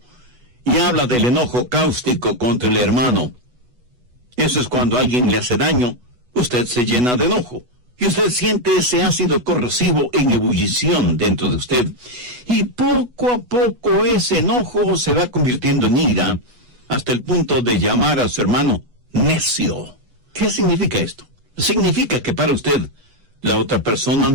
y habla del enojo cáustico contra el hermano. Eso es cuando alguien le hace daño, usted se llena de enojo, y usted siente ese ácido corrosivo en ebullición dentro de usted, y poco a poco ese enojo se va convirtiendo en ira, hasta el punto de llamar a su hermano necio. ¿Qué significa esto? Significa que para usted la otra persona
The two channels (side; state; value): left; late; 8.1 ms